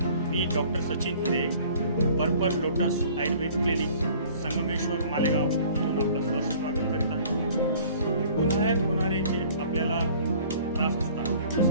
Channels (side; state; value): both; inverted; correlation -0.52